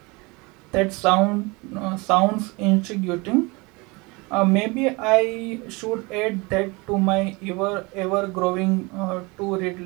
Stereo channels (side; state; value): left; quieter; 26.2 dB